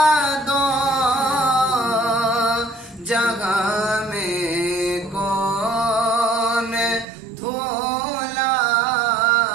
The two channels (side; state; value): left; drops out; at 7.1 s